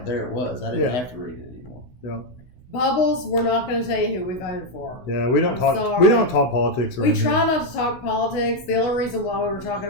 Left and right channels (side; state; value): right; late; 16 ms